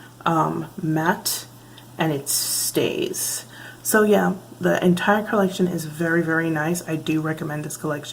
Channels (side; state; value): both; identical; correlation 1.00